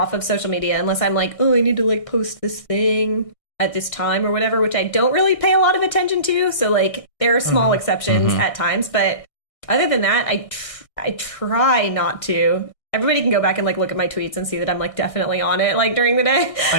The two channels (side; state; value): right; late; 1.6 ms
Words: of social media unless I'm like, oh, I need to like post this thing at this time or whatever, which I don't really pay a lot of attention to. So like there are small exceptions at times. But other than that, I try not to. Everybody can go back and like look at my tweets and see that I'm like definitely on it like during the day. I